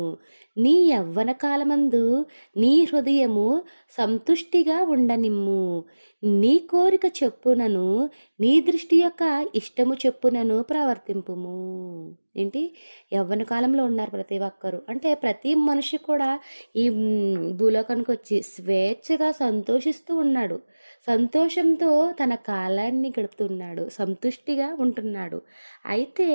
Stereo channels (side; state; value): both; inverted; correlation -1.00